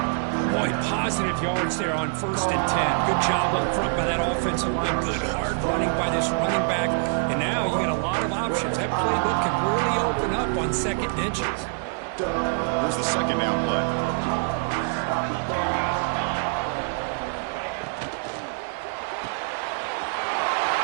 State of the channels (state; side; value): silent; left; 58 dB below the other